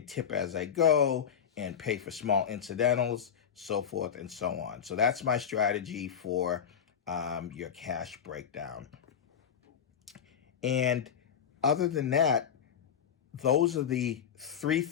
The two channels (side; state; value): right; quieter; 8.0 dB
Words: tip as I go and pay for small incidentals, so forth and so on. So that's my strategy for your cash breakdown. And other than that, those are the three